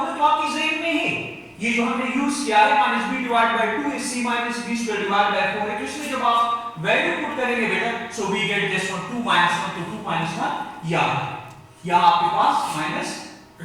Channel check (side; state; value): both; identical; correlation 1.00